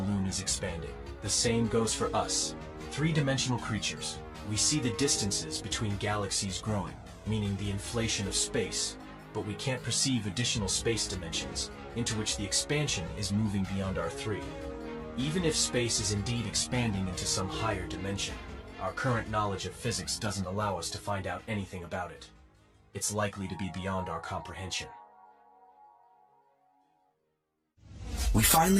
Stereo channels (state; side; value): identical; both; correlation 1.00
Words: is expanding. The same goes for us, three-dimensional creatures. We see the distances between galaxies growing, meaning the inflation of space, but we can't perceive additional space dimensions into which the expansion is moving beyond our three. Even if space is indeed expanding into some higher dimension, our current knowledge of physics doesn't allow us to find out anything about it. It's likely to be beyond our comprehension. We